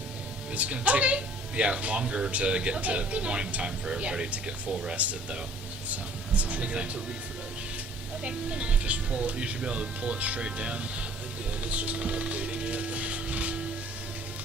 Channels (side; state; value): both; normal; correlation 0.54